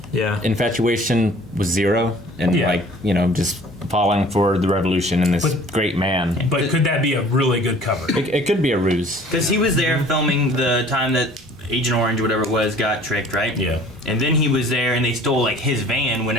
yeah, infatuation with Zero and, Yeah. just falling for the revolution and this But- great man. But could that be a really good cover? It could be a ruse. Because he was there filming the time that Agent Orange, whatever it was, got tricked, right? Yeah. And then he was there, and they stole like his van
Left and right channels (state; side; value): normal; both; correlation 0.50